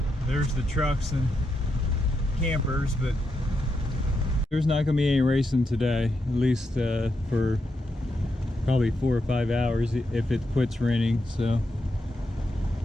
there's the trucks and campers, but there's not going to be any racing today, at least for probably 4 or 5 hours if it quits raining. So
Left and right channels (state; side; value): normal; both; correlation 0.84